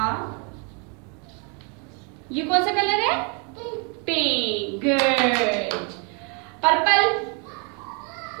ये कौन सा कलर है? Pink, good. Purple,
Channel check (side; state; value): left; quieter; 35.7 dB